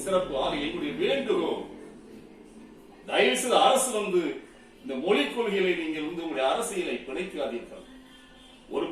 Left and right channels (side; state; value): both; identical; correlation 1.00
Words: சிறப்பு. ஆக எங்களுடைய வேண்டுகோள், தயவு செய்து அரசு இந்த மொழிக் கொள்கைகளை நீங்கள் உங்களுடைய அரசியலை பிணைக்காதீர்கள். ஒரு